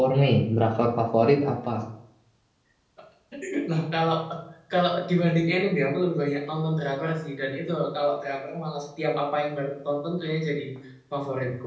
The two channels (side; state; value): both; identical; correlation 1.00